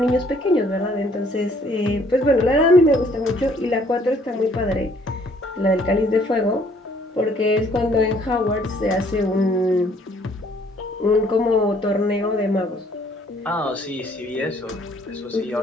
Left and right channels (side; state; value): both; normal; correlation 0.62